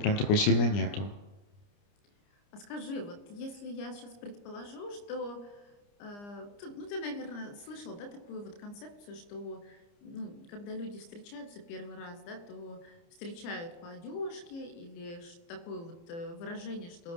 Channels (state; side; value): late; right; 29 ms